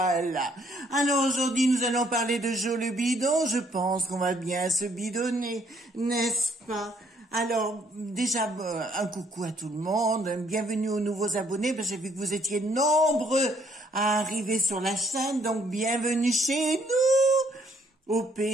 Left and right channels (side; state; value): both; normal; correlation 0.66